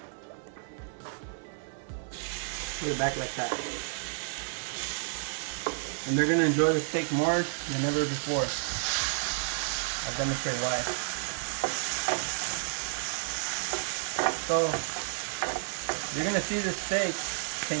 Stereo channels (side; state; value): left; silent; 57 dB below the other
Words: Put it back like that. And they're gonna enjoy the steak more than ever before. I'll demonstrate why. So, you're gonna see the steak